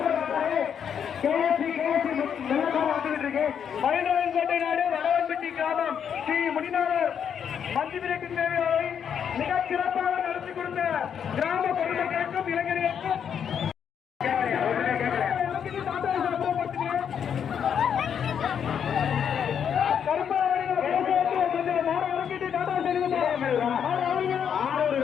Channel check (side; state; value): right; quieter; 8.0 dB